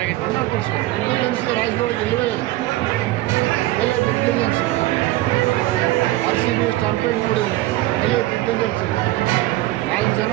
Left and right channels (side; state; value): left; quieter; 17.1 dB